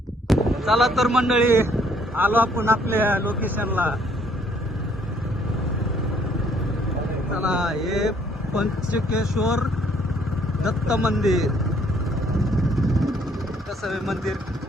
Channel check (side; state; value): both; normal; correlation 0.64